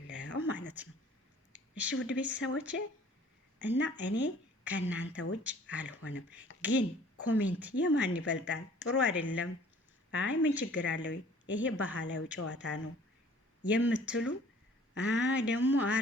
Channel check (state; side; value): normal; both; correlation 0.53